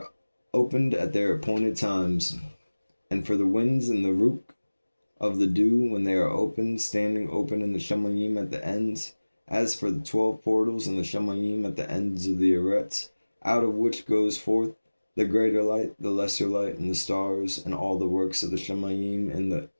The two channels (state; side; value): inverted; both; correlation -1.00